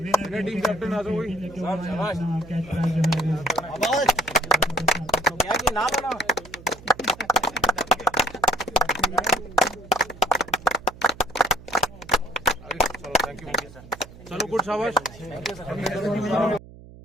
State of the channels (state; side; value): noise; right; hum, 19 dB below the sound